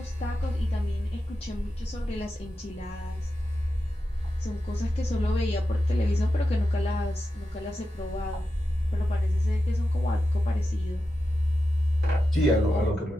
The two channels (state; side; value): normal; both; correlation 0.90